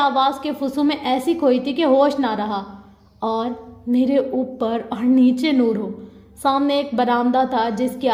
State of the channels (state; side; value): identical; both; correlation 1.00